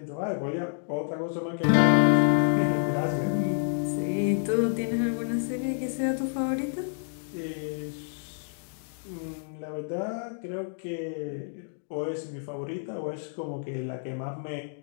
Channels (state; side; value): silent; right; digital silence